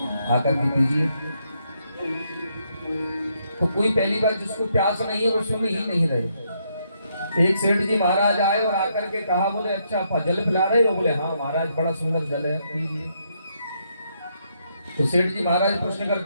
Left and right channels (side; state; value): both; inverted; correlation -0.76